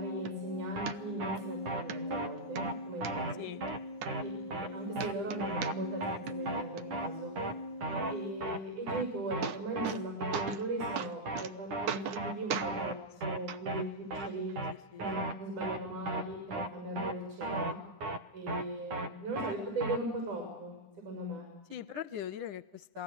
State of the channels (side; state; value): left; late; 9.9 ms